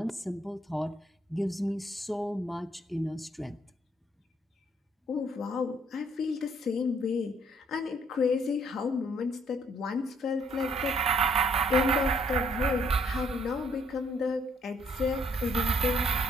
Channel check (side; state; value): both; normal; correlation 0.66